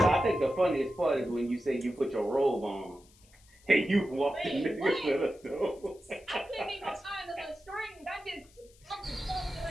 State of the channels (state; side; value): noise; left; hiss, 28 dB below the sound